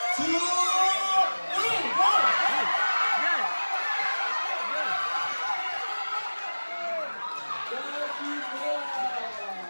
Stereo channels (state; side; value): inverted; both; correlation -1.00